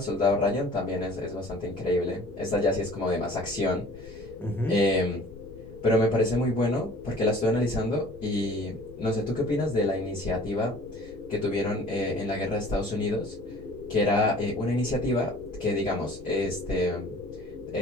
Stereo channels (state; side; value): noise; left; rumble, 18 dB below the sound